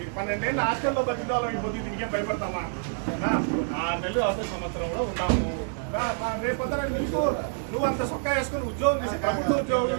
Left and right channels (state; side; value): silent; left; 60 dB below the other